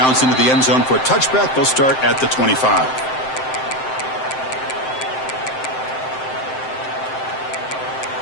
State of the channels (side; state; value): right; late; 7.7 ms